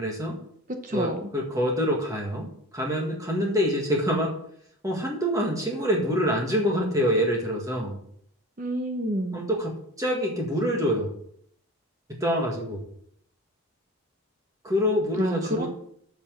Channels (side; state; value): both; normal; correlation 0.35